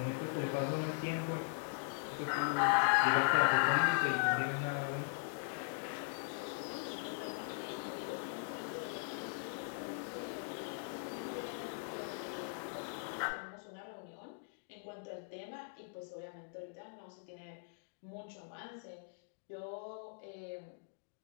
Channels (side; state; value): right; silent; digital silence